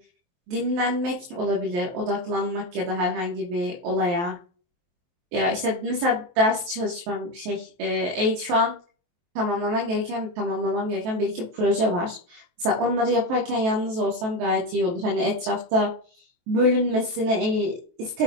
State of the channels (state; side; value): late; left; 23 ms